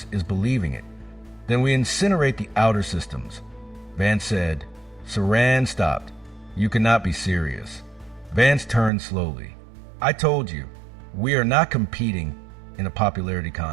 is believing it. Then we incinerate the outer systems. Vance said. Saran stopped. You cannot be serious. Vance turned slowly. I told you, we are not competing in a popularity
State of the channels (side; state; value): left; drops out; at 8.9 s